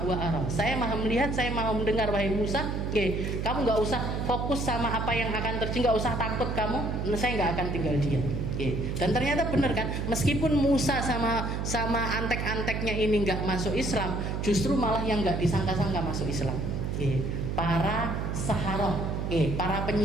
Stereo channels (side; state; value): right; noise; hum, 2 dB below the sound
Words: wa ara. Saya maha melihat, saya maha mendengar wahai Musa. Kamu nggak usah fokus sama apa yang akan terjadi, nggak usah takut kamu. Saya nggak akan tinggal diam. Dan ternyata benar kan, meskipun Musa sama antek-anteknya ini nggak masuk Islam, justru malah yang nggak disangka-sangka masuk Islam. Para saharoh, para